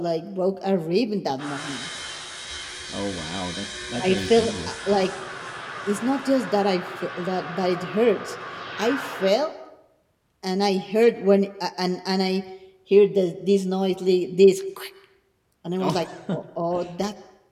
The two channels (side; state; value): both; identical; correlation 1.00